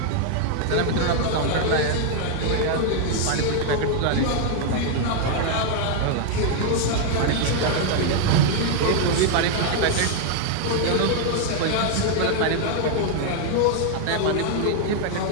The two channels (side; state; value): both; different; correlation 0.00